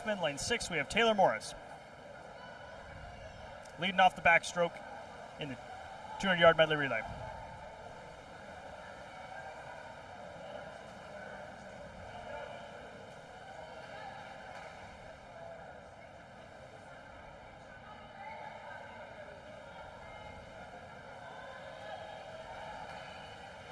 Lane 6, we have Taylor Morris. Leading off the backstroke in the 200-yard medley relay.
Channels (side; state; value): both; identical; correlation 1.00